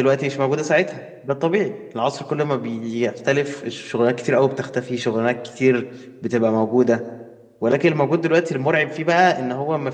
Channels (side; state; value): both; identical; correlation 1.00